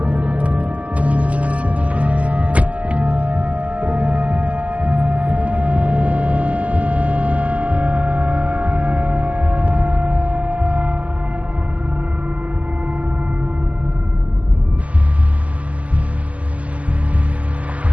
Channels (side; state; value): left; late; 0.069 ms